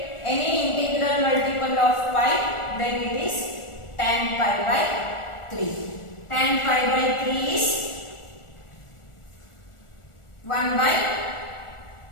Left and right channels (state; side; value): late; right; 1.4 ms